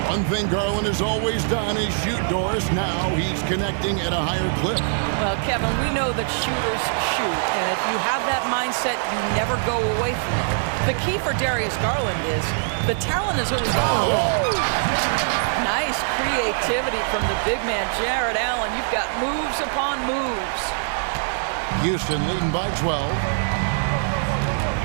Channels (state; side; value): silent; left; digital silence